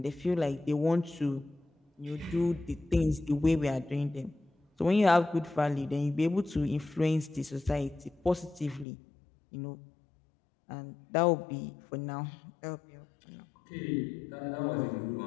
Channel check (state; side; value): drops out; right; at 8.8 s